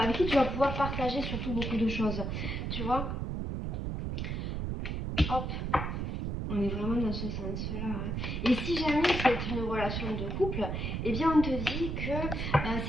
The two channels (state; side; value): noise; right; rumble, 2 dB below the sound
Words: qui tu vas pouvoir partager surtout beaucoup de choses. Tu vois? Hop, on est vraiment dans ce sens-là. Et si jamais c'est une relation de couple, eh bien on te dit que